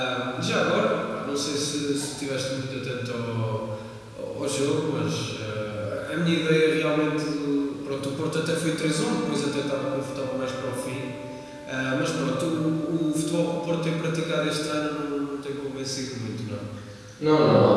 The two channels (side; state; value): both; identical; correlation 1.00